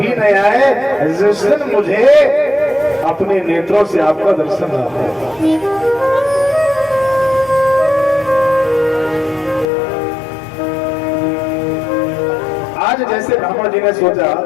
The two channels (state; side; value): drops out; right; at 9.7 s